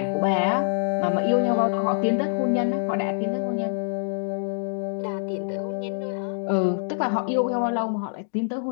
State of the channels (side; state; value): right; silent; digital silence